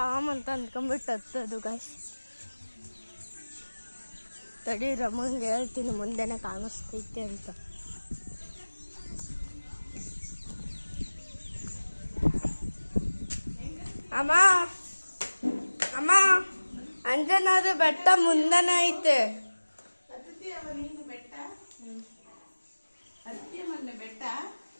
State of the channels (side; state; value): both; inverted; correlation -1.00